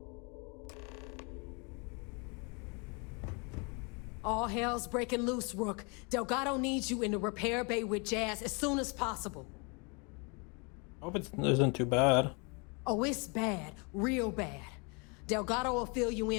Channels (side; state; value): right; quieter; 32.5 dB